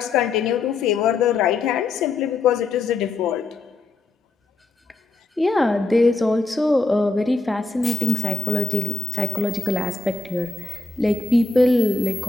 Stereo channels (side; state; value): right; quieter; 3.3 dB